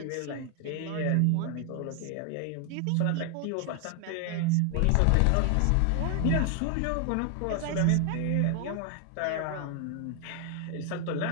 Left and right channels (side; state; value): both; different; correlation 0.00